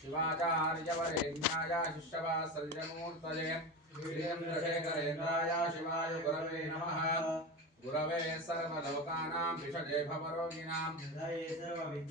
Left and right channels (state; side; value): normal; both; correlation 0.23